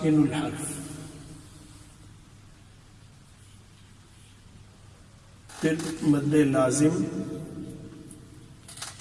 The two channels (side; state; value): both; identical; correlation 1.00